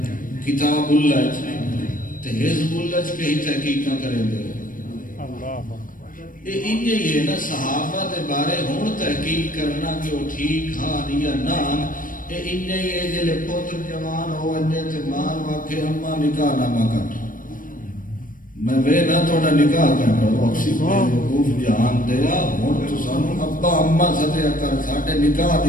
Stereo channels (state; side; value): late; right; 0.40 ms